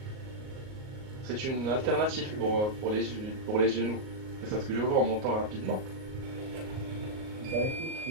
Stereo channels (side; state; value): left; late; 38 ms